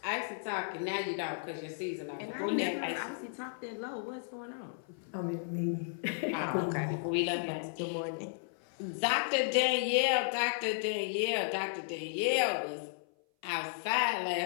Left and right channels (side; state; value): right; silent; 55 dB below the other